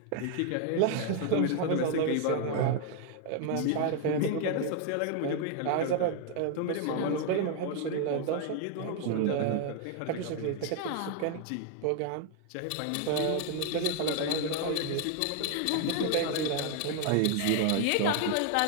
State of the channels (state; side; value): different; both; correlation 0.00